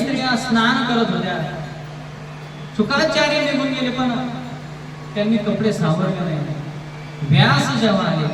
स्नान करत होत्या, शुकाचार्य निघून गेले, पण त्यांनी कपडे सावरले नाही. व्यास जेव्हा आले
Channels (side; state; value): both; identical; correlation 1.00